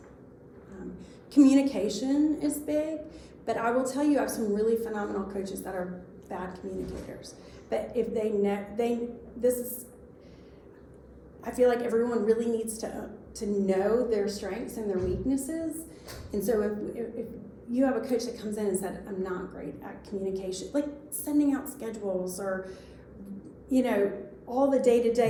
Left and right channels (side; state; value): both; identical; correlation 1.00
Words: Communication is big, but I will tell you, I have some really phenomenal coaches that are bad communicators. But if I feel like everyone really needs to know their strengths and their weaknesses. And so if you have a coach that comes in and said, I'm not great at communication, like sending out schedules or, all the